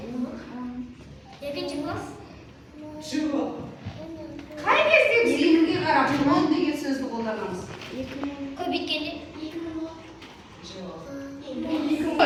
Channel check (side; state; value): both; identical; correlation 1.00